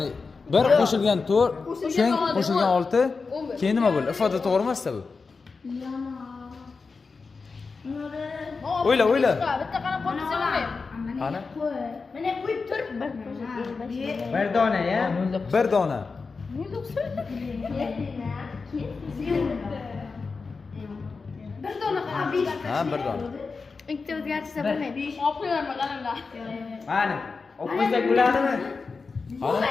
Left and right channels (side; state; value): right; quieter; 4.5 dB